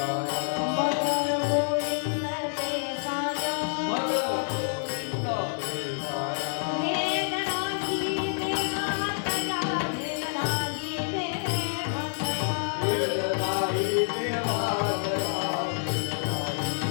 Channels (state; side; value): silent; right; 59 dB below the other